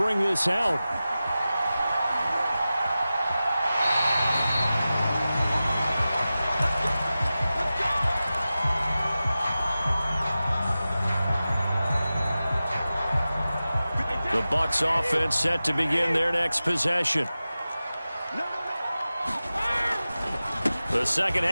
this out. The Bucs offense set to begin their next possession. The second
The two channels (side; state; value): both; inverted; correlation -0.95